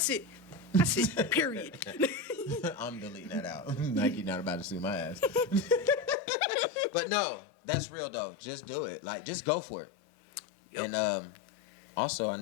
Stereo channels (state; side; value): drops out; right; at 6.2 s